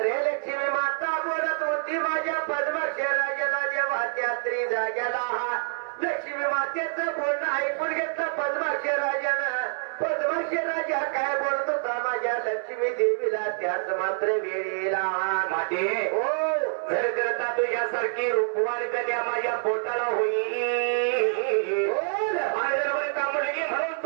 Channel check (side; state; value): left; silent; 60 dB below the other